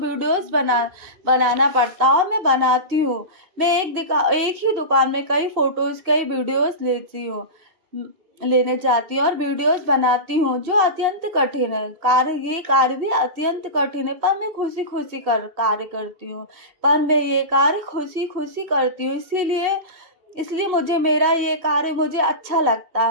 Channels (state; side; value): late; left; 2.7 ms